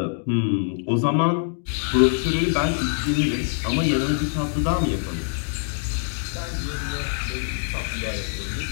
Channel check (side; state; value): right; silent; digital silence